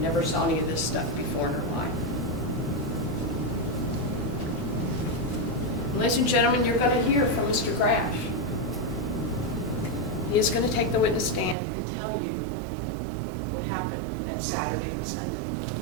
saw any of this stuff before in her life. Ladies and gentlemen, you're going to hear from Mr. Grasch. He is going to take the witness stand and tell you what happened that Saturday and Sunday.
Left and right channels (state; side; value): drops out; left; at 11.6 s